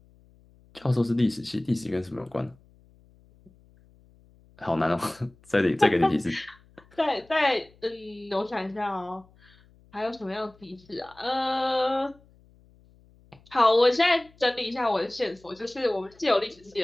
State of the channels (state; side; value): noise; left; hum, 29 dB below the sound